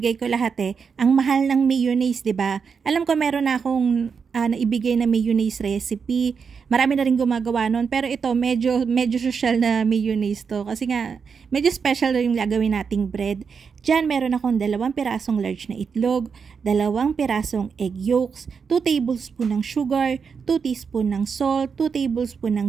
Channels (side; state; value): left; quieter; 6.0 dB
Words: ko lahat eh. Ang mahal ng mayonnaise, 'di ba? Alam ko meron na akong naibigay na mayonnaise recipe. Marami na rin gumagawa nun. Pero ito, medyo social na mayonnaise to. Kasi nga, medyo special na yung gagawin nating bread. Diyan, meron akong 2 pirasong large na itlog, 2 pirasong egg yolks, 2 tablespoon ng sugar, 2 teaspoon ng salt, 2 tablespoon ng